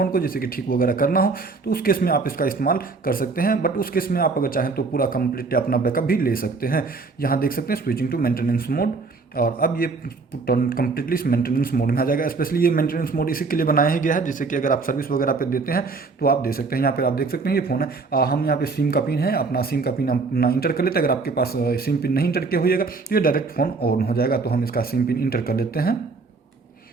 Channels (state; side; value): quieter; left; 4.2 dB